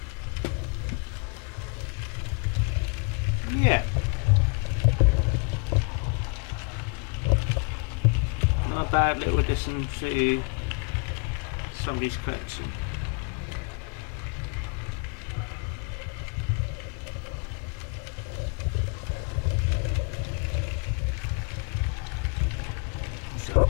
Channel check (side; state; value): right; quieter; 33.1 dB